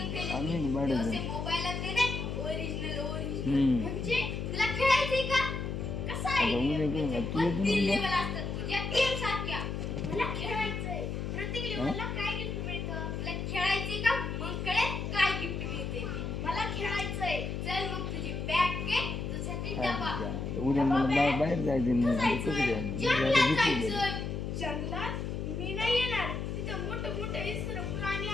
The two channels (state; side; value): noise; left; hum, 3 dB below the sound